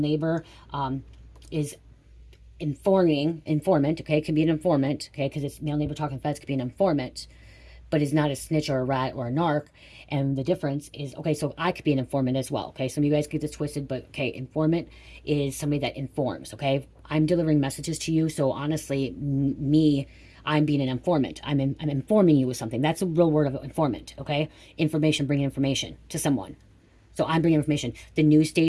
is informant, okay? It could be an informant, okay? Because it's male neighbor talking to feds, could be an informant, but is not a snitch or a rat or a narc. And the difference is, okay, so I could be an informant as well, okay? Some of you guys get this twisted, but okay, informant is somebody that informs, okay? I'm delivering messages to you, so honestly, I'm being an informant. I'm informing you with something. That's a real word of informant, okay? Information, bringing information to someone. So I'm bringing information. The news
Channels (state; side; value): identical; both; correlation 1.00